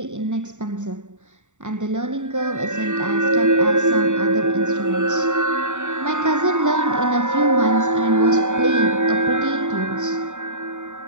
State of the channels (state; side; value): late; left; 0.85 ms